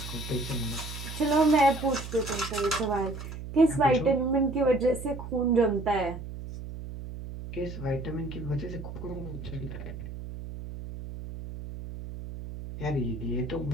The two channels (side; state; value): right; noise; hum, 10 dB below the sound